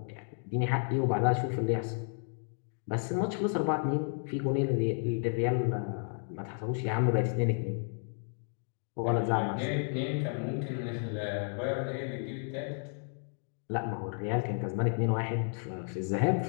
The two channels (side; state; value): right; silent; 56 dB below the other